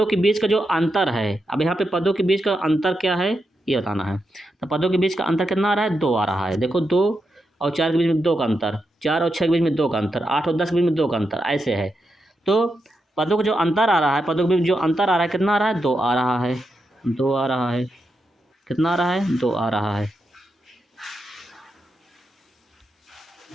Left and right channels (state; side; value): normal; both; correlation 0.86